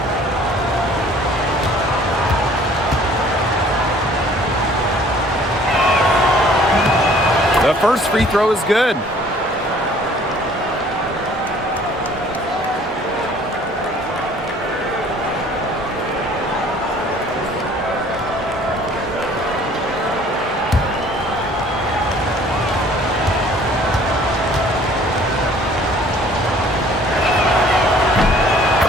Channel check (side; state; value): both; normal; correlation 0.54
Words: The first free throw is good.